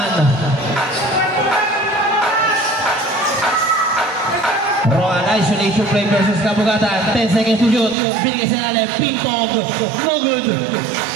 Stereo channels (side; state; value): left; drops out; at 8.0 s